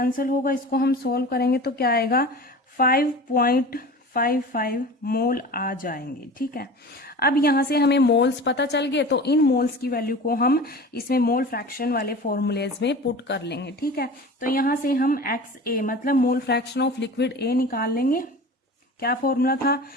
होगा, इसको हम सोल्व करेंगे तो क्या आएगा, 5.5 0.55 मोल आ जाएंगे। ठीक है, अब यहां से हमें मोल्स पता चल गए, तो इन मोल्स की वैल्यू को हम इसमें मोल फ्रैक्शन वाले फॉर्मूलेज में पुट कर लेंगे। ठीक है, तो यहां से हम XA मतलब मोल फ्रैक्शन ऑफ लिक्विड A निकाल लेंगे। क्या फॉर्मूला था,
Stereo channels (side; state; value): both; normal; correlation 0.36